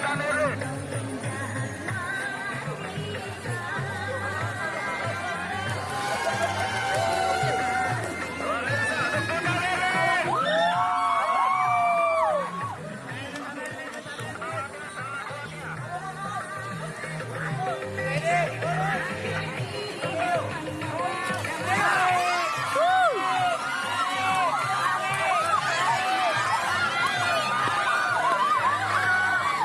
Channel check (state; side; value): identical; both; correlation 1.00